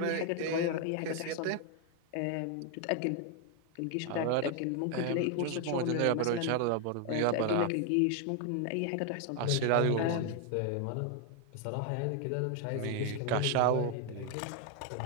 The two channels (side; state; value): both; different; correlation 0.01